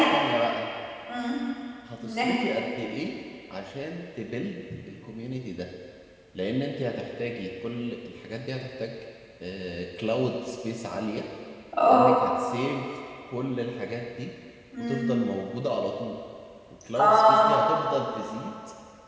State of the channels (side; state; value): both; identical; correlation 1.00